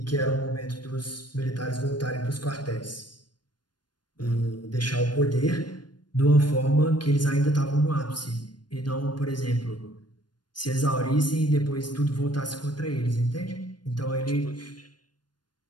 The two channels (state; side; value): late; right; 0.71 ms